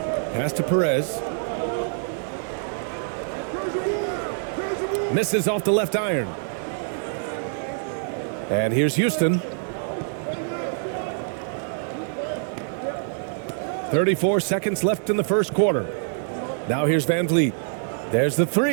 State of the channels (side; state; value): left; silent; digital silence